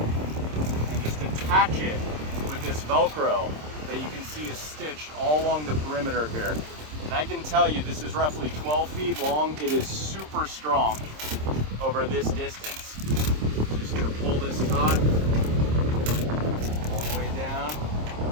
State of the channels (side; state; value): left; late; 26 ms